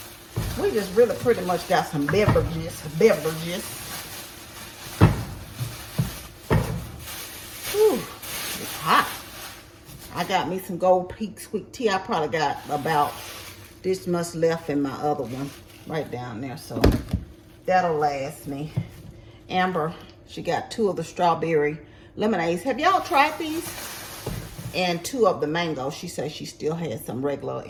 we just really pretty much got some beverages. Whew, it's hot. I got me some Gold Peak sweet tea. I probably got about this much left in my other one right down there, so that'll last me. Amber, she got 2 of the strawberry lemonades. Have y'all tried these? And 2 of the mango. She says she still has some regular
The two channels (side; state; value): both; identical; correlation 1.00